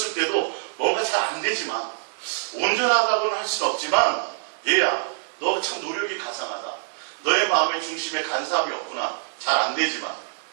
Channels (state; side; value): silent; left; 62 dB below the other